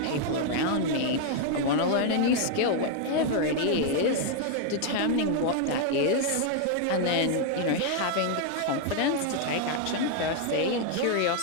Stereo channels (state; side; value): different; both; correlation 0.00